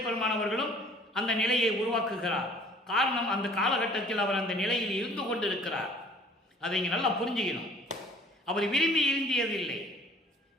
பெருமானவர்களும் அந்த நிலையை உருவாக்குகிறார். காரணம், அந்த காலகட்டத்தில் அவர் அந்த நிலையில் இருந்து கொண்டிருக்கிறார். அதை இங்கே நல்லா புரிஞ்சுக்கணும். அவர் விரும்பி இருந்தியதில்லை.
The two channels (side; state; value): both; normal; correlation 0.52